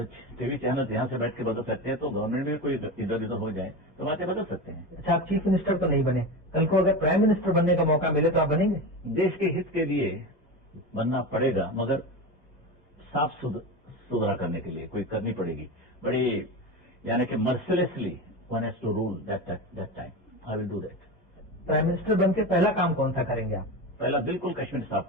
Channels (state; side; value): normal; both; correlation 0.24